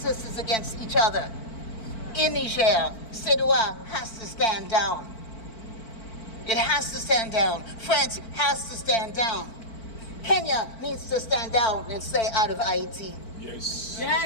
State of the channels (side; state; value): right; late; 4.5 ms